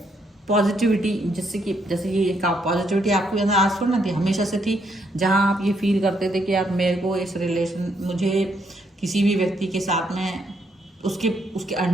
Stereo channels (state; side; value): normal; both; correlation 0.74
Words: पॉजिटिविटी जिससे कि जैसे ये एक पॉजिटिविटी आपके अंदर आज थोड़ी ना थी, हमेशा से थी। जहाँ आप ये फील करते थे कि यार मेरे को इस रिलेशन, मुझे किसी भी व्यक्ति के साथ में उसके